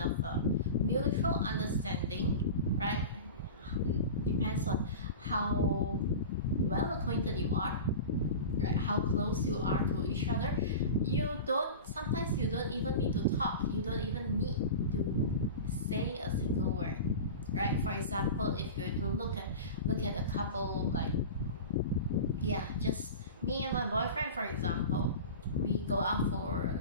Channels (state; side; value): inverted; both; correlation -0.30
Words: mutual understanding, right? Depends on how well acquainted you are, right? How close you are to each other. Sometimes you don't even need to talk. You don't even need to say a single word, right? For example, if you're to look at a couple, like, yeah, just me and my boyfriend, for example, we go out for